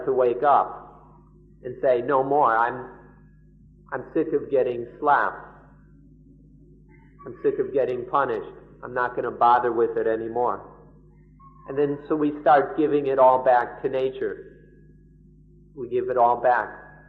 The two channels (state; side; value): identical; both; correlation 1.00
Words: to wake up and say, no more, I'm sick of getting slapped. I'm sick of getting punished. I'm not going to bother with it anymore. And then so we start giving it all back to nature. We give it all back